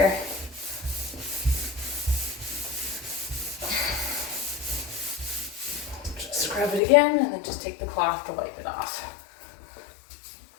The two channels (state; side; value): drops out; right; at 6.8 s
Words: Just scrub it again and then just take the cloth to wipe it off.